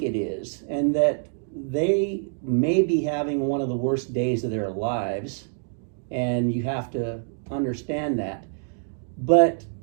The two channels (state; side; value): silent; left; digital silence